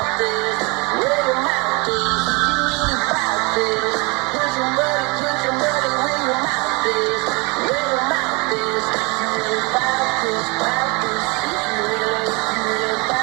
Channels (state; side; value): quieter; left; 28.6 dB